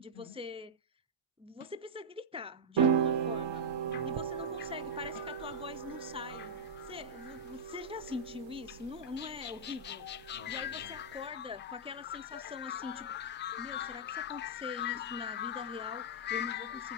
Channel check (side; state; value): both; normal; correlation -0.07